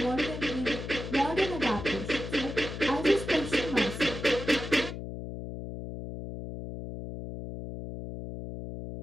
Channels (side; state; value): left; noise; hum, 8 dB below the sound